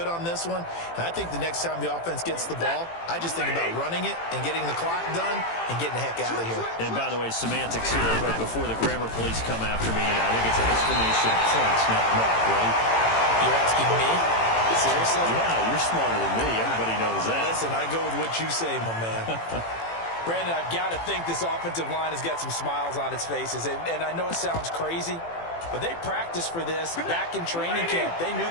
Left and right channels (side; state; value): right; late; 18 ms